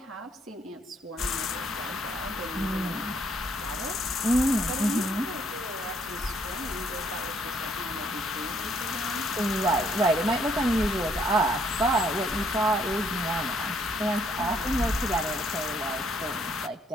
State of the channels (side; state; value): both; normal; correlation 0.68